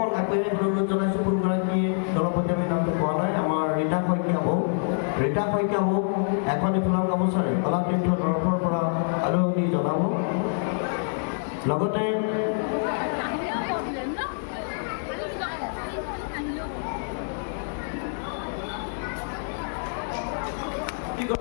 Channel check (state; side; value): silent; right; digital silence